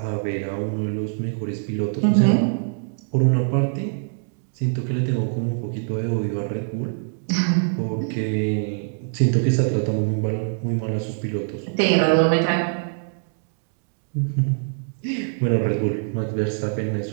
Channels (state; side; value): silent; left; digital silence